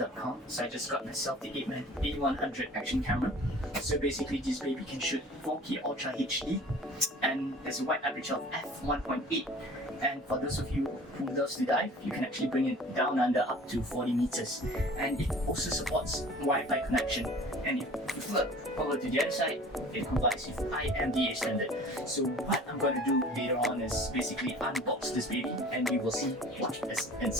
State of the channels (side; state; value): both; normal; correlation 0.45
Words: So I just got myself the APEMAN A100 action camera. So basically this baby can shoot 4K Ultra HD and there's a wide aperture of f1.8. And for those of you who loves to dive, you can actually bring it down under up to 40 meters. And it also supports Wi-Fi connection. And if you flip over to the other side, it complies with IMDA standard. So what I'm going to do later on is basically unbox this baby and we will see what is